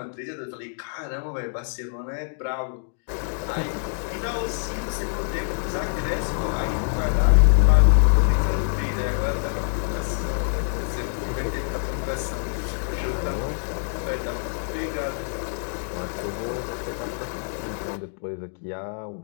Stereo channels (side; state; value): right; silent; digital silence